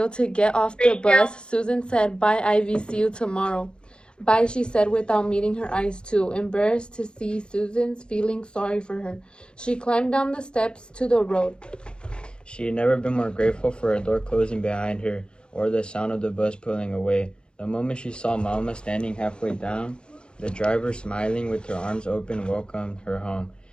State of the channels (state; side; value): late; right; 0.052 ms